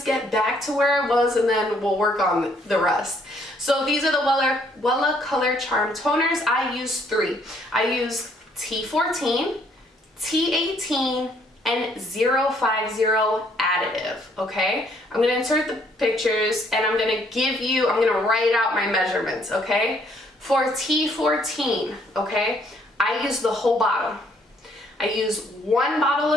get back to where it was, and then we'll work on the rest. So these are the Wella Color Charm toners. I use 3. I use T14, T18, and 050 additive, okay? I'm gonna insert the pictures and I'm gonna write out my measurements, okay? For T14, okay, I use the whole bottle. I use 1 bottle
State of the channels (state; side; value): normal; both; correlation 0.66